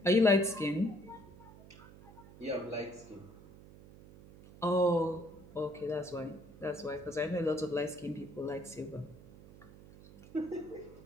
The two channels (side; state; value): right; noise; hum, 19 dB below the sound